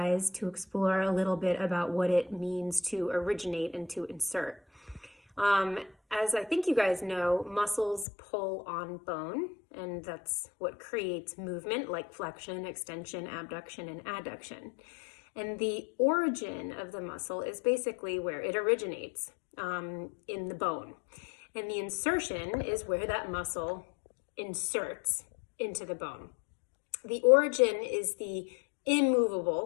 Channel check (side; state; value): right; drops out; at 8.1 s